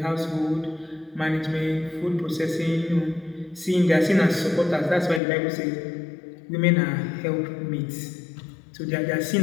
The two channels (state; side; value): drops out; right; at 5.2 s